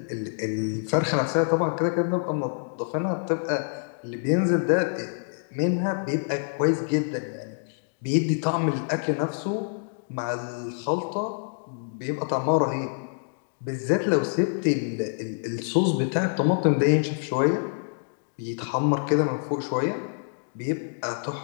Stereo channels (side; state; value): right; silent; digital silence